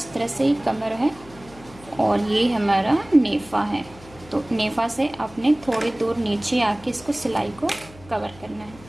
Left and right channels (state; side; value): noise; left; hum, 21 dB below the sound